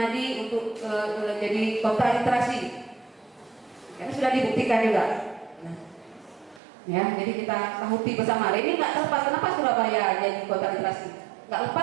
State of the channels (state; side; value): drops out; left; at 6.6 s